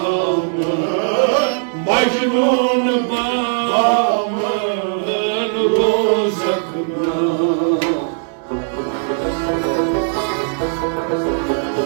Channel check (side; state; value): left; silent; digital silence